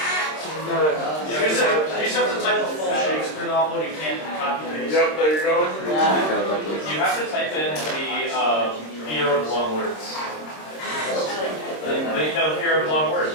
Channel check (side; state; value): right; late; 26 ms